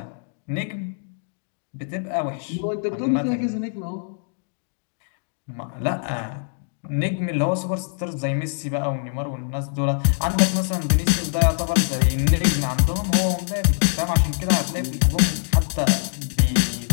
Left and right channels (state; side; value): silent; right; 63 dB below the other